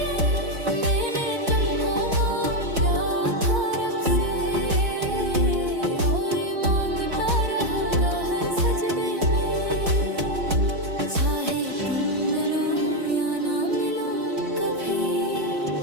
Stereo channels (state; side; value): late; left; 4.3 ms